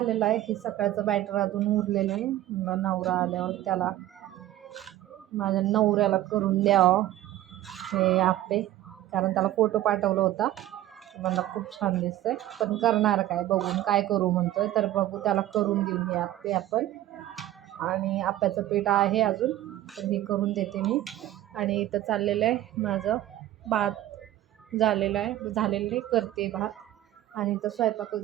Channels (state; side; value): quieter; left; 14.0 dB